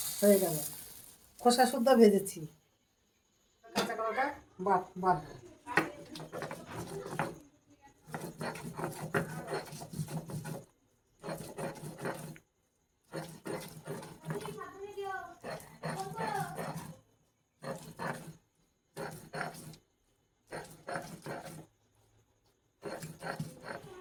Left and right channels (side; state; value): both; identical; correlation 1.00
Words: হয়ে গেল, খোসা শুদ্ধ ভেজেছি। কাঁচা কলাটা বাটবো।